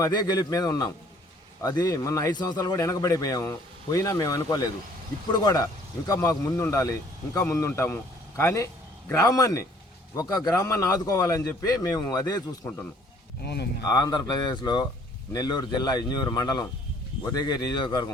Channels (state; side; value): normal; both; correlation 0.58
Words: అదే గెలుపు మీద ఉన్నాం. అది మొన్న 5 సంవత్సరాలు కూడా వెనకబడిపోయాము, పోయినా మేము అనుకోలేదు. ఇప్పుడు కూడా ఇంకా మాకు ముందుండాలి, ఇంకా ముందుంటాము. కానీ గ్రామాన్ని ఆదుకోవాలని చెప్పి మేము అదే చూసుకుంటున్నాం. ఆంధ్రప్రదేశ్లో నెల్లూరు జిల్లా ఇంజూరు మండలం ఉదయగిరి